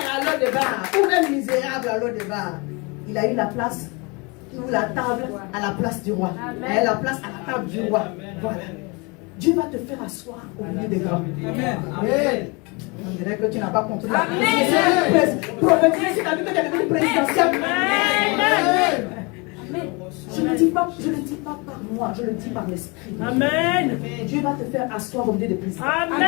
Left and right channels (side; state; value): right; quieter; 28.9 dB